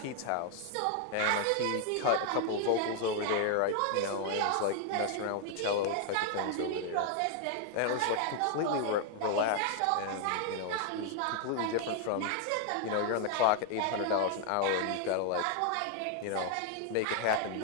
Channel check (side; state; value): both; different; correlation 0.00